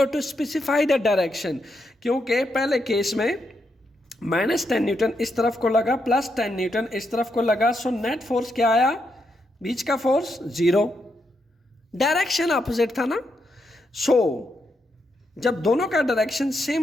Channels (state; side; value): normal; both; correlation 0.81